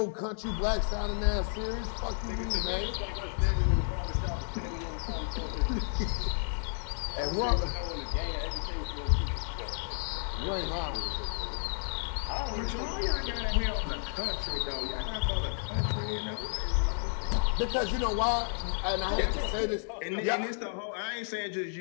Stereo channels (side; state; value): right; silent; digital silence